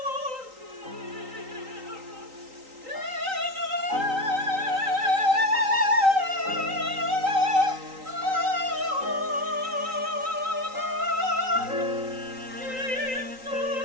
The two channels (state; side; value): late; left; 3.9 ms